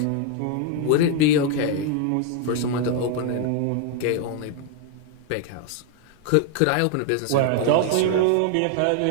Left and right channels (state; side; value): different; both; correlation 0.00